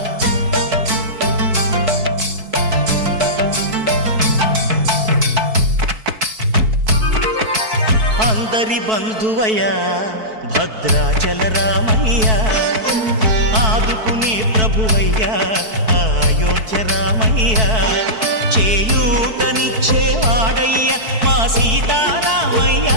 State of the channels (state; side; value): late; left; 4.6 ms